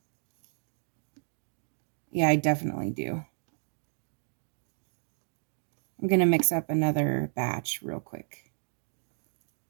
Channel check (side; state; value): left; silent; digital silence